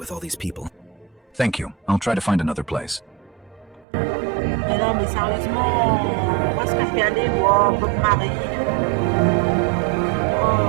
all these people. Thank you. I'll try to find another place. Mais non, mais sérieusement, où est-ce que je vais aller, moi, votre mari?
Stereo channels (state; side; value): drops out; left; at 3.9 s